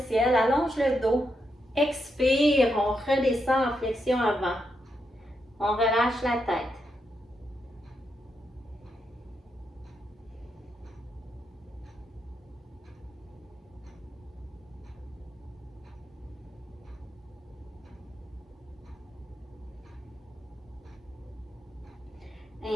ciel, allonge le dos. Expire, on redescend en flexion avant. On relâche la tête.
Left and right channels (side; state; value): both; normal; correlation 0.82